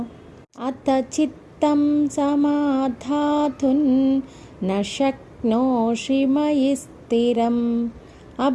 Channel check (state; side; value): identical; both; correlation 1.00